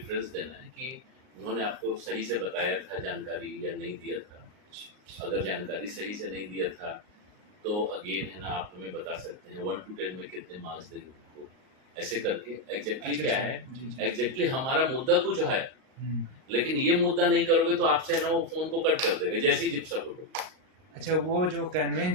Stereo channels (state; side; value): late; left; 38 ms